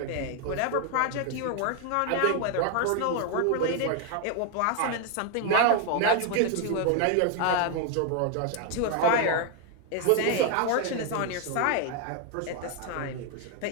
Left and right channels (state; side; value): different; both; correlation 0.01